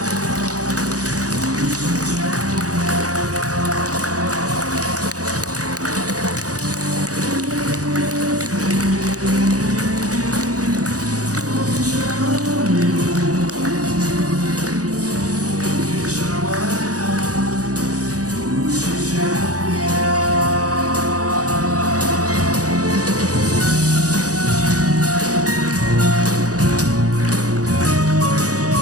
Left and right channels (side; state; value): left; late; 0.67 ms